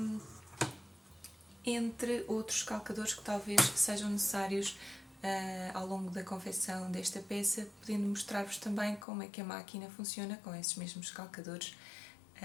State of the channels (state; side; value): drops out; right; at 9.1 s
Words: Entre outros calcadores que talvez sejam necessários ao longo da confecção desta peça, podendo mostrar-vos também como é que a máquina funciona com esses mesmos calcadores.